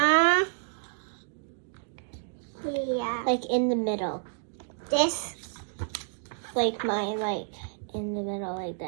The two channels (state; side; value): silent; left; digital silence